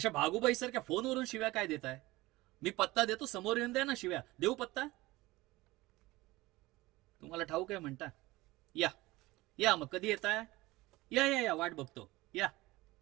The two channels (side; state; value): left; quieter; 19.8 dB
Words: भागूबाई सारख्या फोनवरून शिव्या काय देताय? मी पत्ता देतो, समोर येऊन द्या ना शिव्या. देऊ पत्ता? तुम्हाला ठाऊक आहे म्हणता? या या, मग कधी येताय? या या या, वाट बघतो. या.